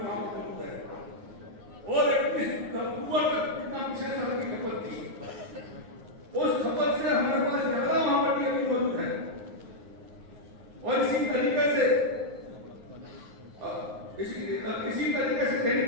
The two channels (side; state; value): left; late; 9.6 ms